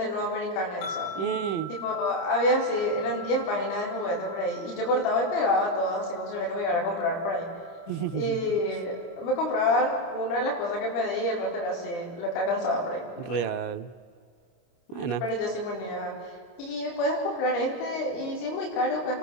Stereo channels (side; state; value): right; late; 25 ms